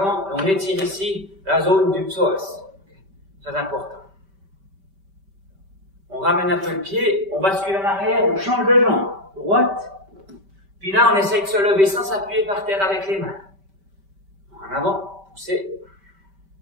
et on étire ici la zone du psoas. Très important. On ramène un peu le pied, on bascule en arrière, on change de jambe. Droite. Puis là, on essaye de se lever sans s'appuyer par terre avec les mains. En avant, pousser.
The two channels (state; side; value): late; left; 5.1 ms